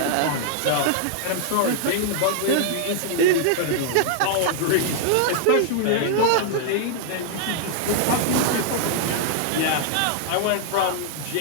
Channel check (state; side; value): different; both; correlation -0.01